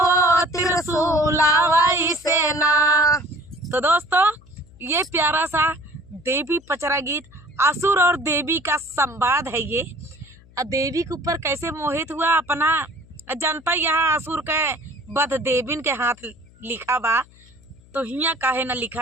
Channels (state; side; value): noise; left; hum, 26 dB below the sound